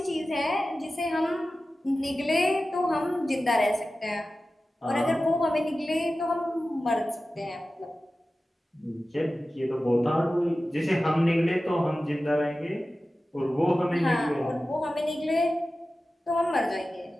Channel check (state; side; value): normal; both; correlation 0.95